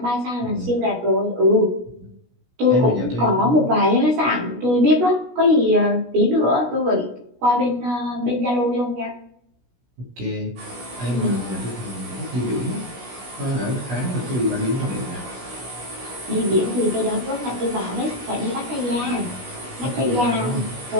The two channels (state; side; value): late; left; 16 ms